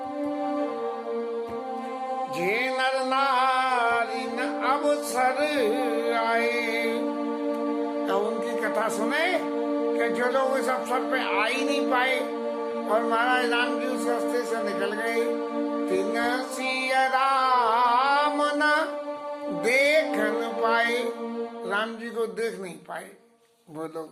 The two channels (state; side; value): identical; both; correlation 1.00